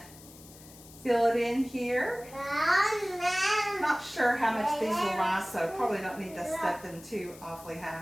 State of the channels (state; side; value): noise; left; hiss, 20 dB below the sound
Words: fill it in here. Not sure how much these will rise, so probably don't need to set them too awfully